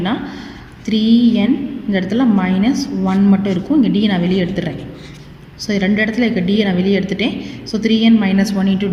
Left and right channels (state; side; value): identical; both; correlation 1.00